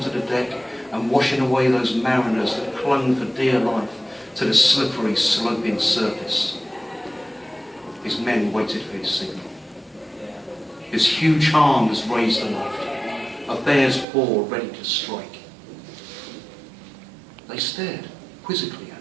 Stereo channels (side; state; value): left; drops out; at 14.1 s